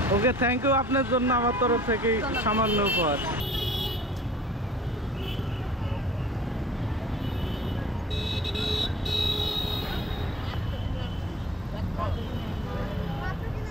ওকে, থ্যাংক ইউ। আপনার জন্য আমার তরফ থেকে সামান্য উপহার।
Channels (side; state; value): both; normal; correlation 0.50